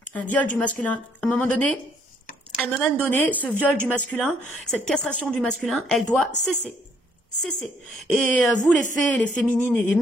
Un viol du masculin. À un moment donné, ce viol du masculin, cette castration du masculin, elle doit cesser. Cessez. Et vous, les fées, les féminines et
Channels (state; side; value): normal; both; correlation 0.67